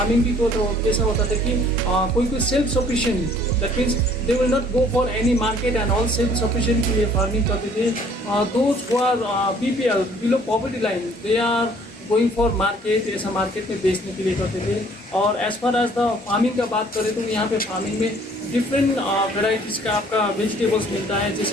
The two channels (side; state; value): both; normal; correlation 0.57